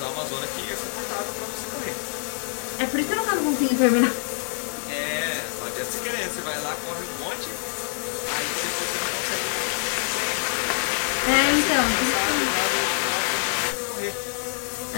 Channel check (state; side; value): silent; right; 61 dB below the other